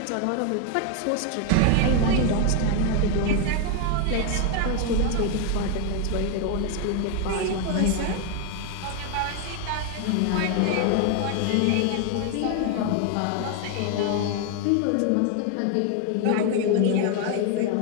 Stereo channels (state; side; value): different; both; correlation 0.01